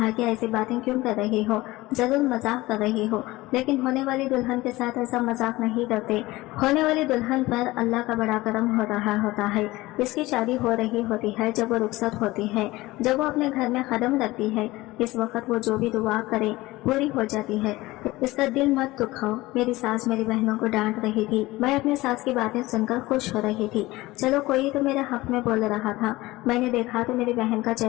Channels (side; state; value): right; quieter; 19.2 dB